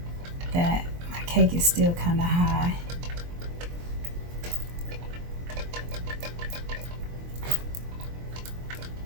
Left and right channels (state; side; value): late; left; 23 ms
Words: that my cake is still kind of high.